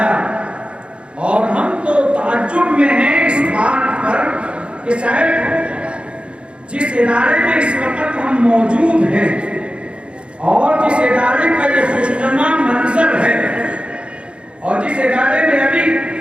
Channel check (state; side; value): late; left; 0.058 ms